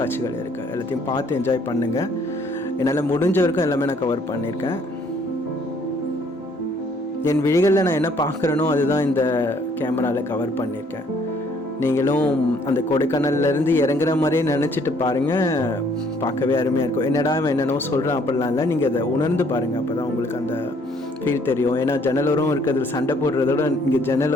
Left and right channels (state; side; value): normal; both; correlation 0.63